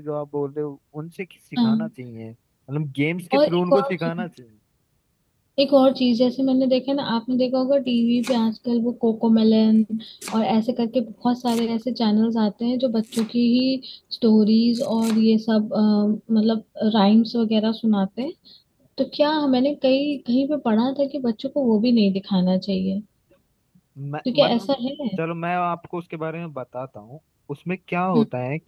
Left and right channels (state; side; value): identical; both; correlation 1.00